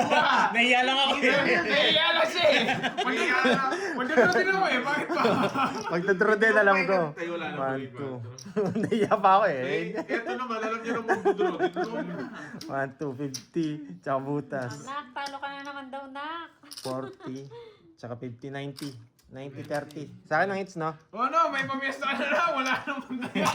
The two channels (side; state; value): both; identical; correlation 1.00